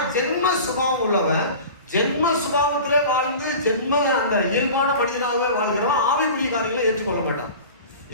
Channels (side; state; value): both; inverted; correlation -0.38